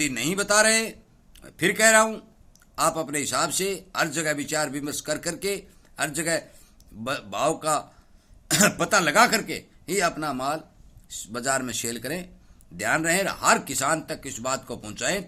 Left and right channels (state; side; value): identical; both; correlation 1.00